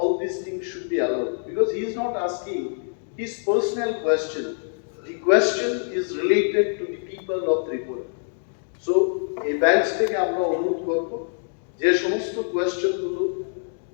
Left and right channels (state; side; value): silent; right; digital silence